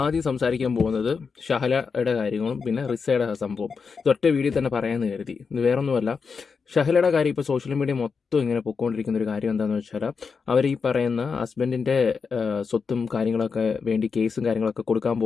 സംസാരിക്കാൻ പോകുന്നത് ഷഹലയുടെ കാര്യങ്ങളും പിന്നെ റിസയുടെ സംഭവം. ഇതൊറ്റ വീഡിയോ തന്നെ പറയാമെന്ന് കരുതി. ഇത് വേറൊന്നുമല്ല, ഷഹലയുടെ കാര്യം ഇപ്പോൾ സോഷ്യൽ മീഡിയ മൊത്തം ഇങ്ങനെ പൊയ്ക്കൊണ്ടിരിക്കുന്ന ഒരു കാര്യം എന്താണെന്ന് വെച്ചാൽ, അവർ ഈ പറയുന്ന ഹസ്ബൻഡിൻ്റെ സ്വത്തും കാര്യങ്ങളൊക്കെ വേണ്ടി കേസും കാര്യങ്ങളൊക്കെ കൊടുക്കാൻ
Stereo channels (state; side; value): quieter; right; 5.4 dB